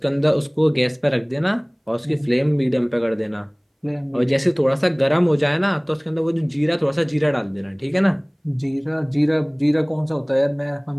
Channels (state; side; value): identical; both; correlation 1.00